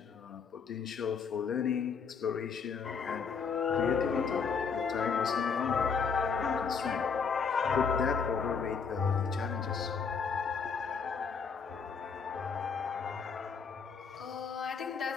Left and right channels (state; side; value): quieter; right; 5.8 dB